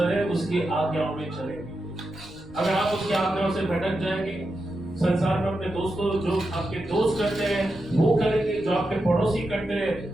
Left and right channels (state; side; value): normal; both; correlation 0.88